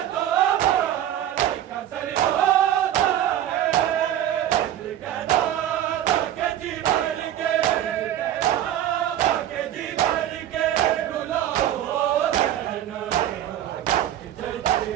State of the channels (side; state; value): left; quieter; 11.8 dB